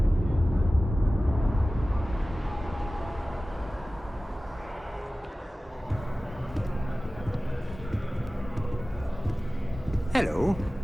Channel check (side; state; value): both; normal; correlation 0.97